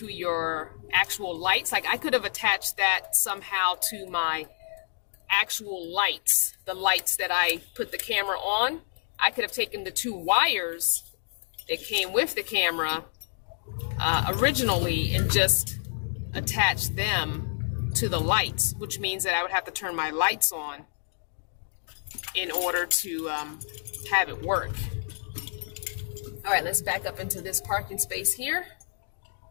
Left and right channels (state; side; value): silent; right; digital silence